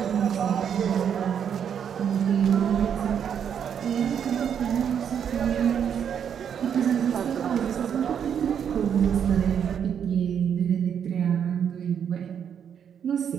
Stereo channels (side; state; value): left; quieter; 8.2 dB